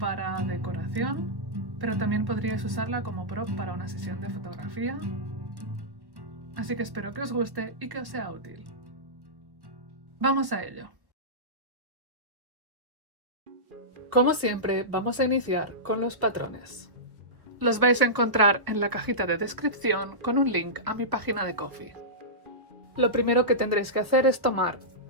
decoración, pero también podríais usarla como prop para una sesión de fotografía. Así que espero que os guste y que os sea útil. Vamos a ello. Como siempre, vamos a iniciar con los patrones. Los vais a encontrar en la cajita de descripción con un link a mi página de Ko-fi. Lo primero que tendréis que hacer es tomar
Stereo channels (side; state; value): left; late; 1.3 ms